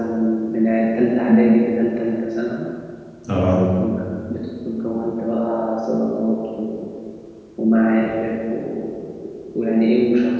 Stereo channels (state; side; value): identical; both; correlation 1.00